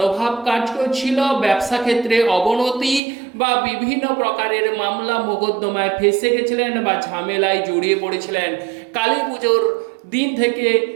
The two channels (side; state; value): left; drops out; at 3.0 s